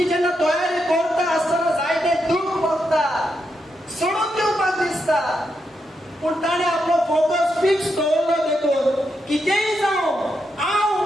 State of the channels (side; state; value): both; normal; correlation 0.83